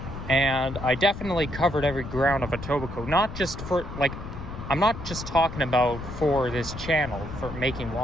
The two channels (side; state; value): left; noise; rumble, 10 dB below the sound